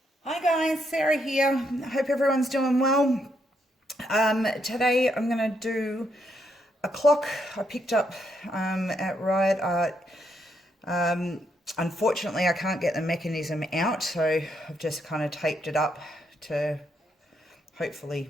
Hi guys, Sarah here. Hope everyone's doing well. Today I'm going to do a clock I picked up at Riot Art. Unfortunately, I can't get the mechanism out, so I've just kind of taped it up to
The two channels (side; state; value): both; normal; correlation 0.77